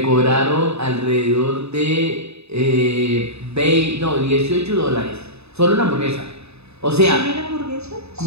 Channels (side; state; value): left; late; 0.79 ms